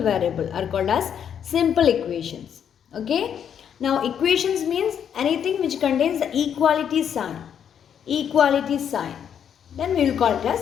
variable are called as simple equations. Okay, now equations means anything which contains the equality sign, then we will call it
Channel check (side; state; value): right; quieter; 8.5 dB